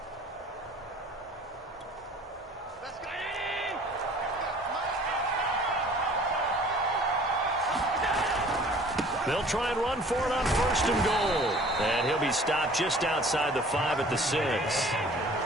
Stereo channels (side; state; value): both; normal; correlation 0.50